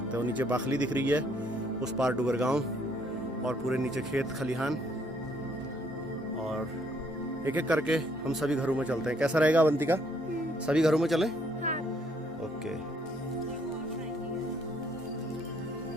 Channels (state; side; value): normal; both; correlation 0.67